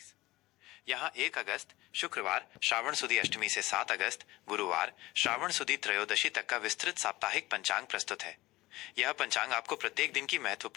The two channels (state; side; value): quieter; right; 18.9 dB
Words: यहाँ 1 अगस्त शुक्रवार श्रावण सुदी अष्टमी से 7 अगस्त गुरुवार श्रावण सुदी त्रयोदशी तक का विस्तृत साप्ताहिक पंचांग प्रस्तुत है। यह पंचांग आपको प्रत्येक दिन की